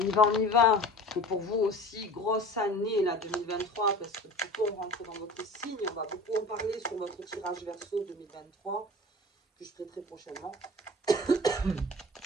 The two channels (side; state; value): both; normal; correlation 0.39